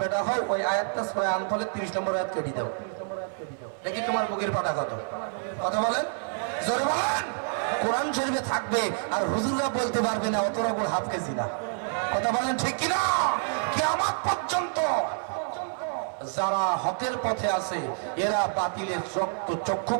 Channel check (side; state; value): left; silent; 59 dB below the other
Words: হও, ওই আয়াতটা সূরা আনফালের 30 নম্বর আয়াত কেটে দাও। দেখি তোমার বুকের পাটা কত। কথা বলেন, জোরে বলেন। কোরআন শরীফে থাকবে আর হুজুররা বলতে পারবে না অতটা করে হাফ কেজি না। কথা বলেন ঠিক কিনা? কিয়ামত পর্যন্ত যারা হকের পথে আছে এরা বাতিলের